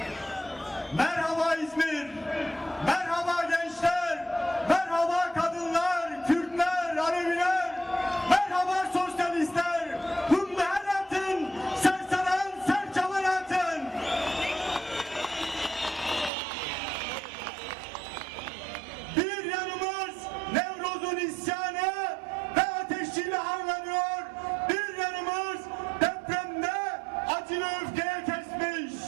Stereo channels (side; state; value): left; drops out; at 16.3 s